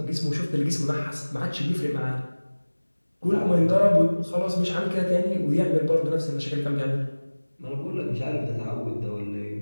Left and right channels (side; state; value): both; inverted; correlation -1.00